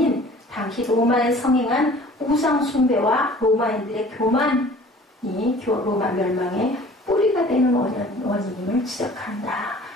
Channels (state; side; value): normal; both; correlation 0.48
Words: 당시 로마에 성행한 우상숭배와 로마인들의 교만이 로마 멸망의 뿌리가 되는 원인임을 지적한다.